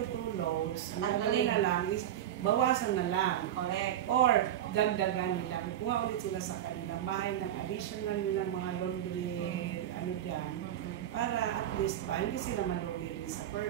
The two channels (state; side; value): quieter; left; 11.4 dB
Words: 2 loads, ang gawin na lang is bawasan na lang. Correct. Or dagdagan nila. Kukuha ulit sila sa kanilang bahay ng additional nilang mga laundry ano dyan. Para at least hindi sila malugi din sa